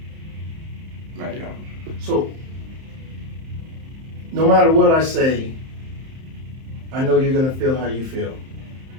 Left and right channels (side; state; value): left; late; 31 ms